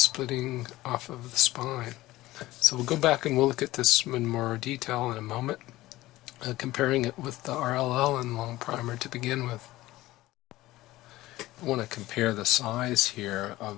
off of the spine. So we'll go back and we'll look at this in more detail in a moment, comparing it with the Allan Longprimer to begin with. I want to compare the size here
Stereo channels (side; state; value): right; quieter; 17.3 dB